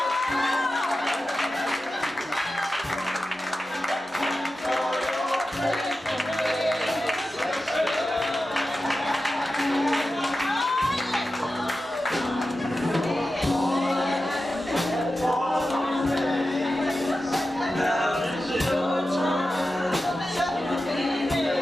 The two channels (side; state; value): both; normal; correlation 0.92